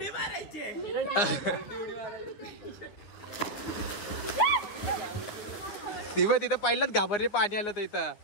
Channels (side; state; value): right; late; 9.7 ms